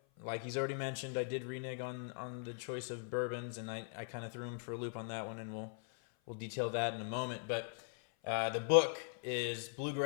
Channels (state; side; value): silent; right; 51 dB below the other